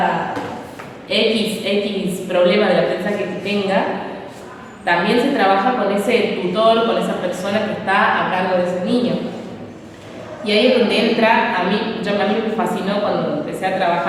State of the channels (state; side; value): identical; both; correlation 1.00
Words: X problema del aprendizaje que tenga. También se trabaja con ese tutor, con esa persona que está a cargo de ese niño. Y ahí es donde entra, a mí me fascinó cuando empecé a